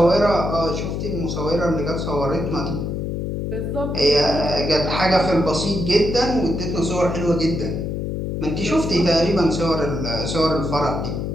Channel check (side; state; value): left; noise; hum, 3 dB below the sound